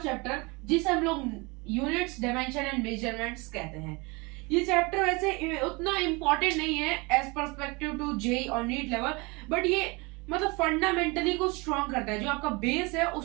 चैप्टर जिसे हम लोग यूनिट्स, डायमेंशन एंड मेजरमेंट्स कहते हैं। ये चैप्टर वैसे उतना इम्पोर्टेंट नहीं है एज पर्सपेक्टिव टू जेईई और नीट लेवल, बट ये मतलब फंडामेंटली को स्ट्रॉन्ग करता है, जो आपका बेस है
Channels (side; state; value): left; quieter; 26.9 dB